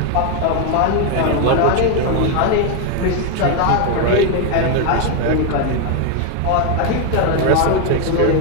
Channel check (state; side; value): different; both; correlation 0.01